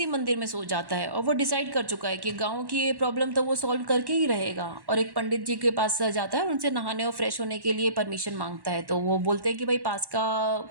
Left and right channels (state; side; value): late; left; 1.1 ms